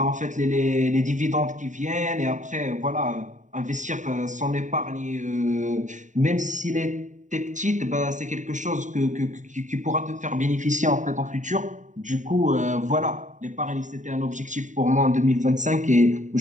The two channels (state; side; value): late; left; 0.36 ms